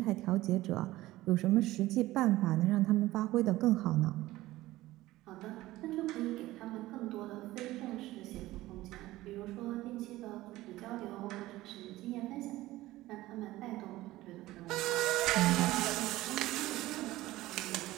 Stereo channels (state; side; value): quieter; left; 17.1 dB